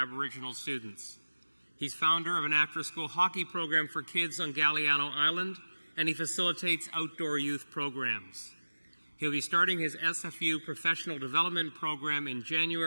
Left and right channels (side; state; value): both; inverted; correlation -1.00